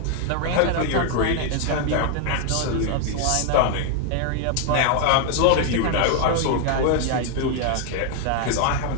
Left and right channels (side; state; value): both; different; correlation 0.00